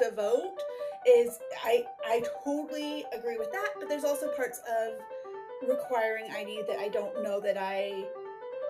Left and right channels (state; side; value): identical; both; correlation 1.00